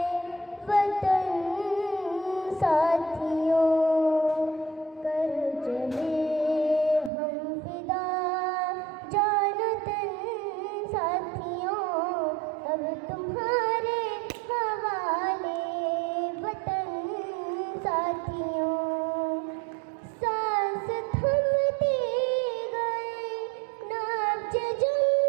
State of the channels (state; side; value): drops out; left; at 7.1 s